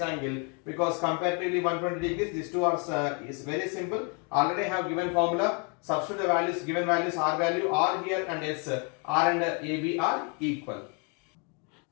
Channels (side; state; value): right; quieter; 35.1 dB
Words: angle, because comparatively 120 degrees, these two are is very simple. Already have given formula. Substitute the values, given values, R value, R here and S, R and AB are equal.